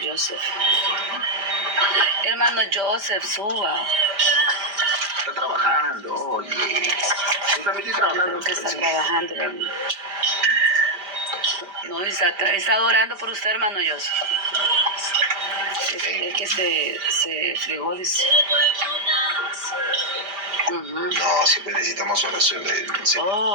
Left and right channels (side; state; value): left; late; 5.1 ms